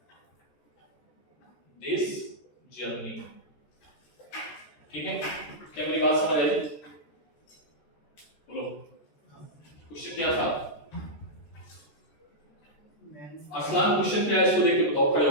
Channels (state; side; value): late; right; 13 ms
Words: this journey, ठीक है। क्या मेरी बात समझ आई? बोलो क्वेश्चन क्या था? असलान क्वेश्चन क्या है इसको देख के बताओ, खड़े